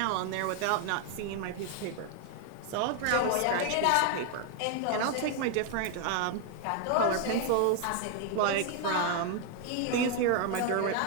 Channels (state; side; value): different; both; correlation 0.00